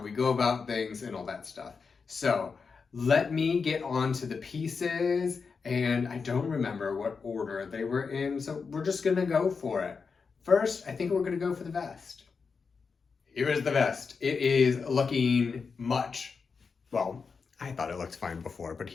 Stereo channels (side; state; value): right; quieter; 5.2 dB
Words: we go about things and all that stuff. So let me get on to the pieces, and I don't remember what order they were in, so we're just gonna go for it. First, I think we're gonna go for the vest. Here is the vest. It is looking much, well, I thought it looked fine before, but